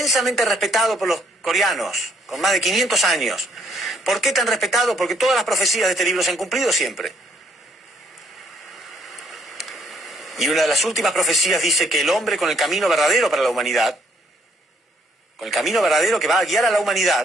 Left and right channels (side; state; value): both; normal; correlation 0.67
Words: respetado por los coreanos, con más de 500 años. ¿Por qué tan respetado? Porque todas las profecías de este libro se han cumplido siempre. Y una de las últimas profecías dice que el hombre con el camino verdadero para la humanidad, con el camino verdadero que va a guiar a la